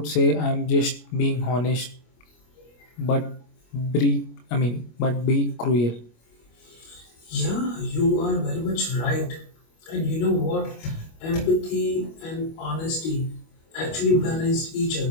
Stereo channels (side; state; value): right; late; 25 ms